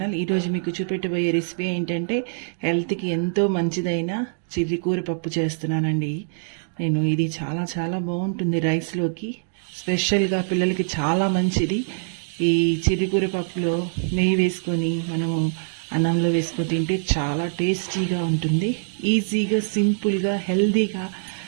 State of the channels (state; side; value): silent; left; digital silence